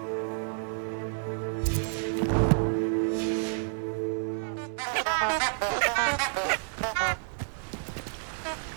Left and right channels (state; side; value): silent; left; digital silence